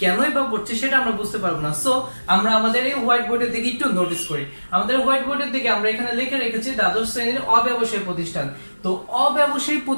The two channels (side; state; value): both; inverted; correlation -1.00